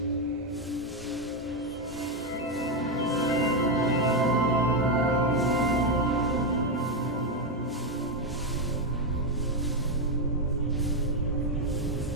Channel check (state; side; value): normal; both; correlation 0.06